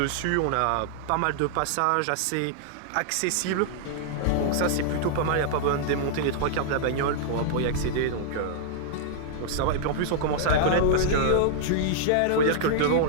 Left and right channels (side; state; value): both; different; correlation -0.01